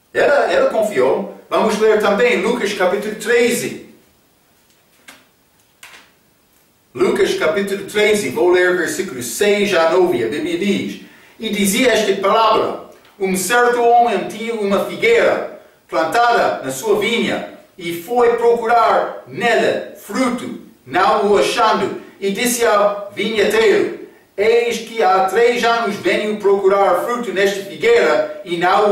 Ela confiou. Vamos ler também Lucas capítulo 13. Lucas capítulo 13, vou ler versículos 6 a 9. A Bíblia diz: E dizia esta palavra: Um certo homem tinha uma figueira plantada na sua vinha, e foi procurar nela fruto, não o achando, e disse ao vinhateiro: eis que há 3 anos venho procurar fruto nesta figueira e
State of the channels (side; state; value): both; identical; correlation 1.00